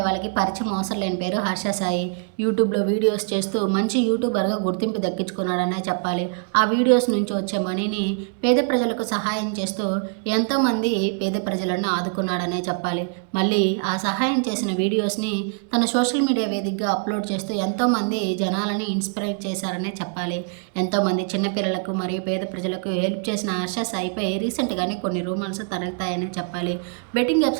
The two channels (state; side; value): quieter; left; 39.5 dB